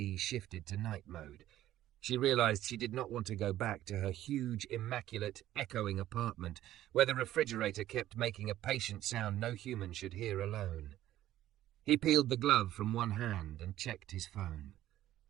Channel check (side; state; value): left; quieter; 13.4 dB